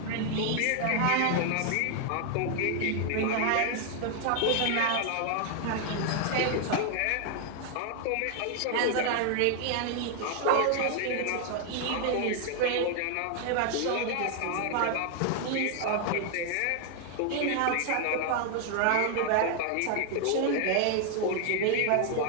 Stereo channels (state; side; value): different; both; correlation 0.00